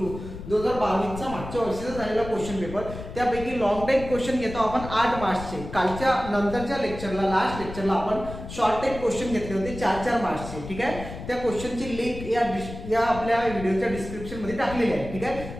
2022 चा मागच्या वर्षीचा झालेला क्वेश्चन पेपर. त्यापैकी लॉंग टाइप क्वेश्चन घेतो आपण 8 मार्क्सचे. कालच्या नंतरच्या लेक्चरला, लास्ट लेक्चरला आपण शॉर्ट टाइप क्वेश्चन घेतले होते 4-4 मार्क्सचे. ठीक आहे. त्या क्वेश्चनची लिंक या आपल्या व्हिडिओच्या डिस्क्रिप्शन मध्ये टाकलेली आहे. ठीक आहे.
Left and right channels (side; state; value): left; noise; rumble, 11 dB below the sound